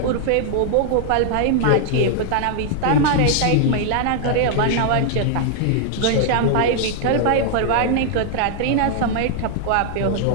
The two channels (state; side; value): different; both; correlation 0.00